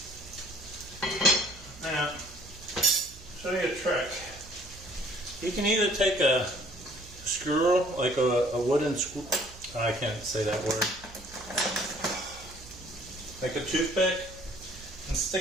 Now, show you a trick. You can either take a screw, like a wooden screw. I can't say that word. Like a toothpick, and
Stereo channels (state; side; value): noise; right; hum, 19 dB below the sound